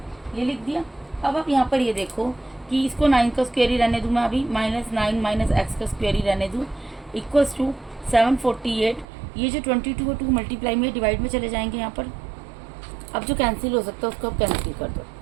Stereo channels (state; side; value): drops out; left; at 9.1 s